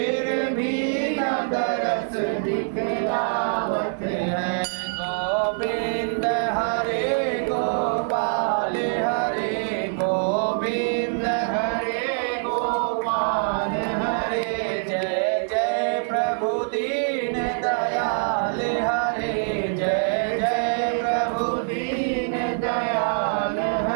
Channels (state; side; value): silent; left; 62 dB below the other